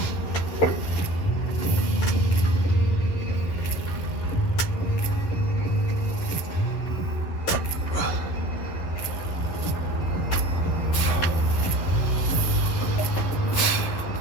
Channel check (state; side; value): late; right; 11 ms